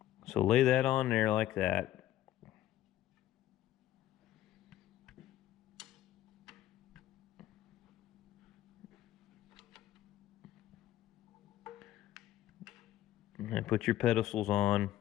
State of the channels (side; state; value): right; quieter; 13.5 dB